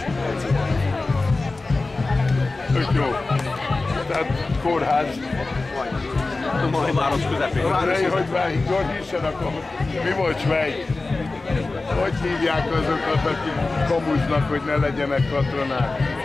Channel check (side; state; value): right; quieter; 3.4 dB